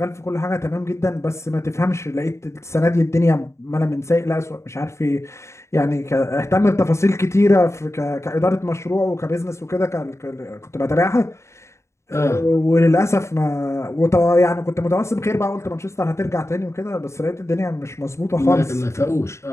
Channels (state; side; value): late; right; 0.14 ms